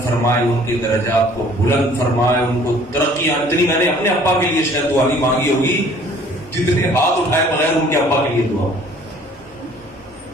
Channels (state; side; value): normal; both; correlation 0.54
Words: فرمائے, ان کے درجات کو بلند فرمائے, ان کو ترقیاں. اتنی میں نے اپنے ابا کے لیے شاید دعا نہیں مانگی ہوگی جتنے ہاتھ اٹھائے بغیر ان کے ابا کے لیے دعا.